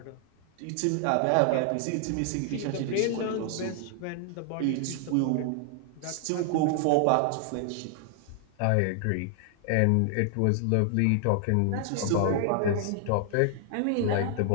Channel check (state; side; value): different; both; correlation 0.00